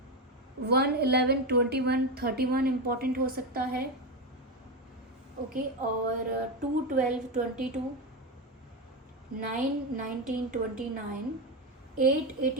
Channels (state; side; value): normal; both; correlation 0.13